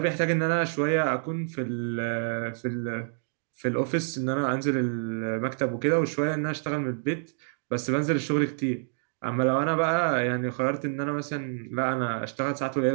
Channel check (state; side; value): silent; left; digital silence